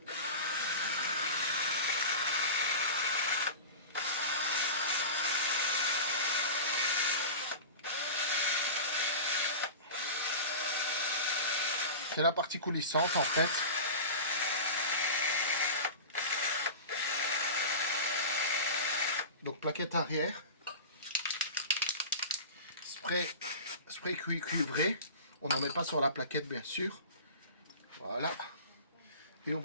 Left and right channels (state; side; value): inverted; both; correlation -0.31